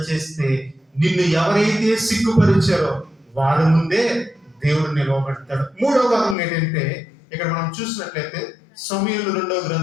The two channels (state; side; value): drops out; right; at 6.4 s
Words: చేస్తే నిన్ను ఎవరైతే సిగ్గుపరిచారో వారి ముందే దేవుడు నిలవబెడతాడు. 3వ వర్ణన ఏంటంటే ఇక్కడ మనం చూసినట్లయితే సమూయేలు 2వ